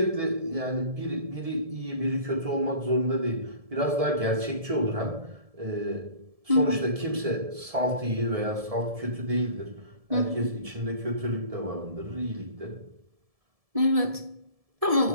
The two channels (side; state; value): left; late; 1.7 ms